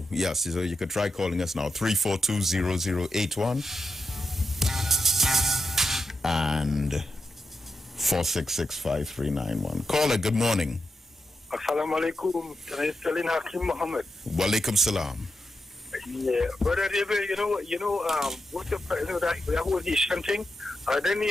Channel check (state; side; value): normal; both; correlation 0.87